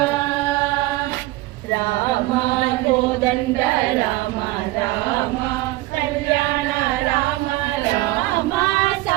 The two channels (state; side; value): quieter; left; 18.7 dB